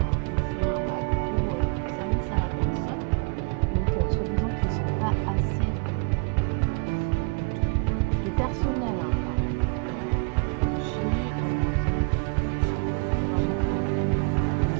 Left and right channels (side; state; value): left; quieter; 34.0 dB